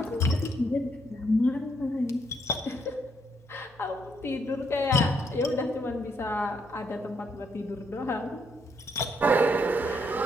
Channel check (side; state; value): both; normal; correlation 0.74